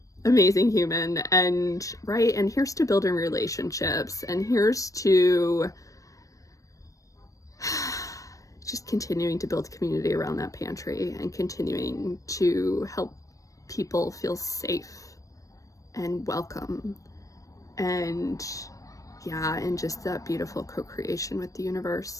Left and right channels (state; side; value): late; right; 0.16 ms